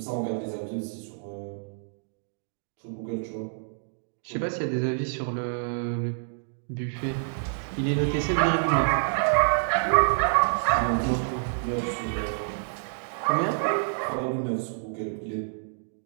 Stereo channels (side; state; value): left; silent; digital silence